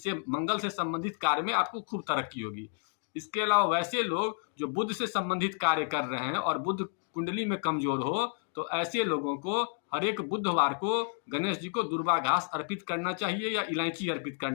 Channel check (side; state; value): right; silent; 57 dB below the other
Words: मंगल से संबंधित कार्य में आपको खूब तरक्की होगी। इसके अलावा वैसे लोग जो बुध से संबंधित कार्य कर रहे हैं और बुध कुंडली में कमजोर हो, तो ऐसे लोगों को हर एक बुधवार को गणेश जी को दुर्वा घास अर्पित करना चाहिए या इलायची अर्पित